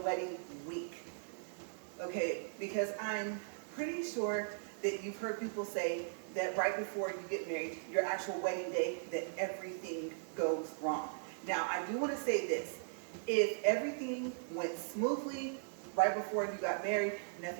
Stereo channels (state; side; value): silent; left; digital silence